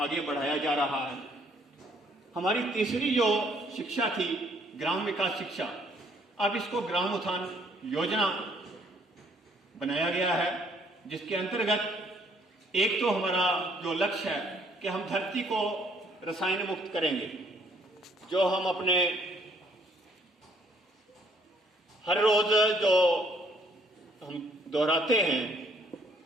बढ़ाया जा रहा है। हमारी तीसरी जो शिक्षा थी ग्राम विकास शिक्षा, अब इसको ग्राम उत्थान योजना बनाया गया है, जिसके अंतर्गत एक तो हमारा जो लक्ष्य है कि हम धरती को रसायन मुक्त करेंगे। जो हम अपने हर रोज जो हम दोहराते हैं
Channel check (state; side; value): normal; both; correlation 0.65